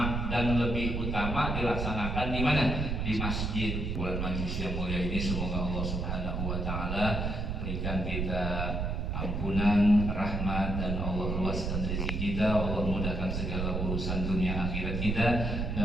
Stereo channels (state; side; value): noise; right; rumble, 1 dB below the sound